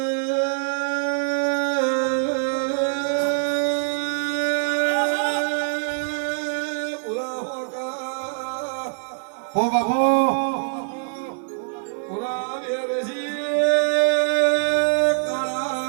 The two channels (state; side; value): silent; left; 58 dB below the other